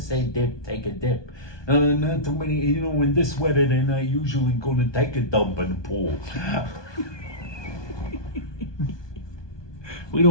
dip, take a dip. Not too many, when this weather, they're not usually going to take a dump in the pool. We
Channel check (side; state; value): right; late; 1.2 ms